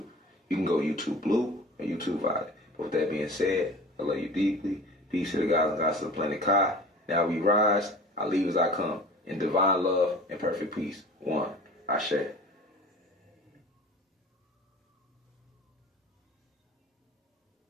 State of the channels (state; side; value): normal; both; correlation 0.41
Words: You can go YouTube Blue or YouTube Violet. But with that being said, I love you deeply. Peace to the gods and gods of the planet Kai. Now we rise, I leave as I come, in divine love and perfect peace. One, Ashe.